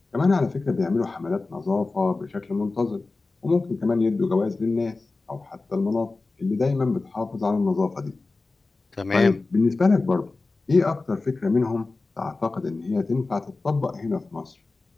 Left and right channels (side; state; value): right; quieter; 3.5 dB